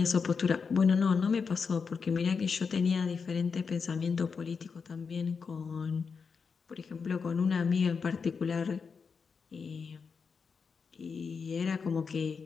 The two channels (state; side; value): quieter; right; 5.5 dB